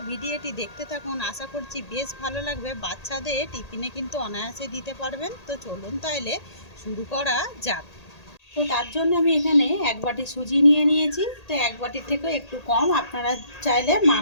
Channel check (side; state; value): right; late; 1.8 ms